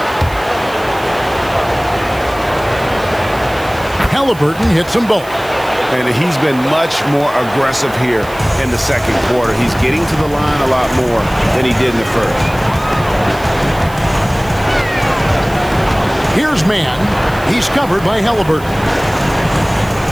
Halliburton hits them both. And he's been much more aggressive here in the second quarter. He's getting to the line a lot more than he did in the first. Here's Mann. He's covered by Halliburton.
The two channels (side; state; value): right; noise; hiss, 20 dB below the sound